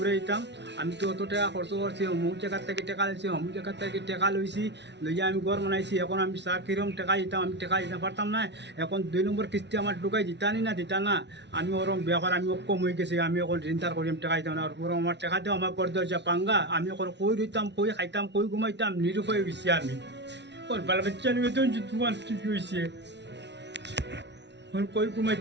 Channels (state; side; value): late; left; 0.51 ms